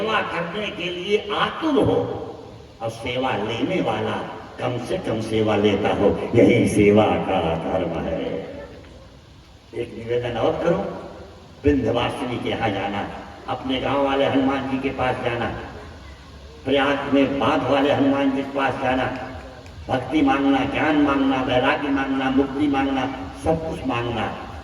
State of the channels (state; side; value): identical; both; correlation 1.00